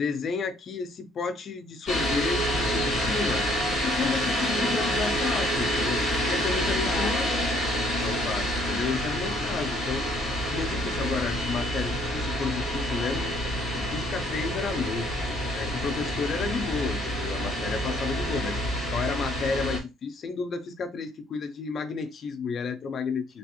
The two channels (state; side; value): normal; both; correlation 0.64